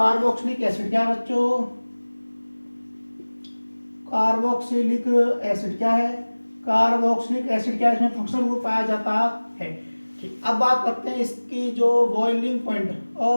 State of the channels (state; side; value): inverted; both; correlation -1.00